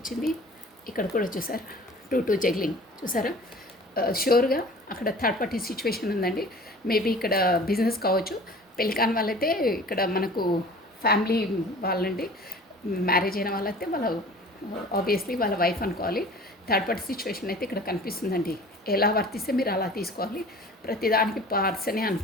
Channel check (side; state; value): both; normal; correlation 0.44